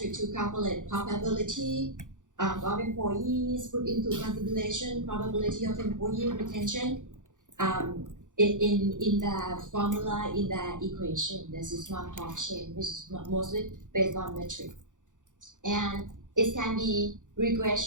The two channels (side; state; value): left; late; 0.86 ms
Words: to calculate probability of employees, put into consideration probability of employee retention in the formula, in the equation. This is Markov-Chain, which is mostly based on metric. And it can be